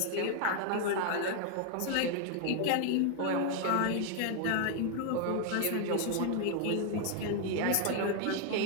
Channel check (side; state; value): both; different; correlation 0.00